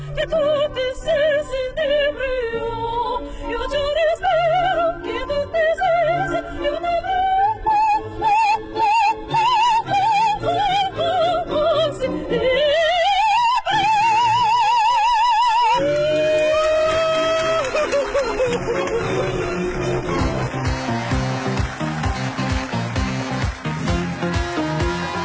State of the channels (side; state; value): both; identical; correlation 1.00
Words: che tutti sensi inebrio io già respiro che tutti sensi io